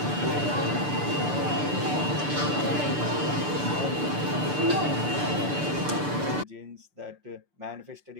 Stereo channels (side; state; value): left; late; 6.8 ms